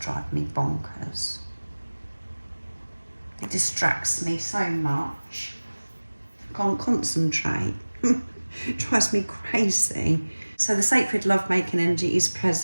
me bonkers. It distracts me so much. Can't concentrate. It drives me crazy. So the sacred love-making energy is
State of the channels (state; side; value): inverted; both; correlation -1.00